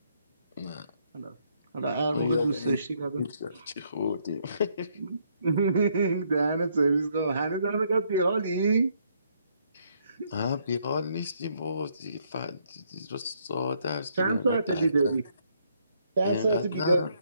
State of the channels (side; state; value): both; inverted; correlation -0.71